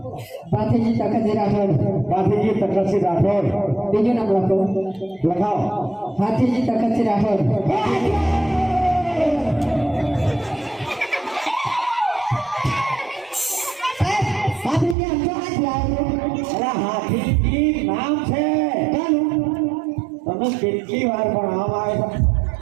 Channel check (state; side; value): drops out; left; at 15.0 s